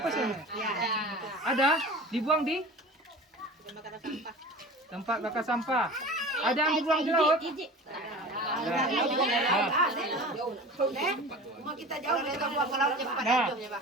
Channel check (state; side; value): normal; both; correlation 0.37